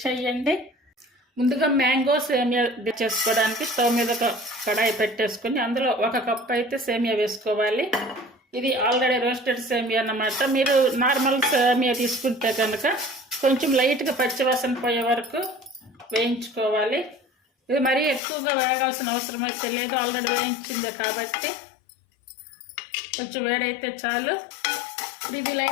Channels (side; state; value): right; drops out; at 18.2 s